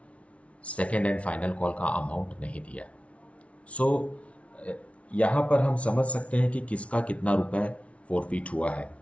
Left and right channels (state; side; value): late; right; 0.063 ms